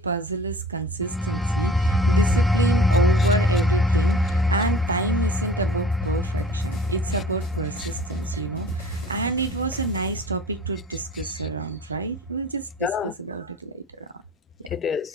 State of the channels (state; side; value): normal; both; correlation 0.45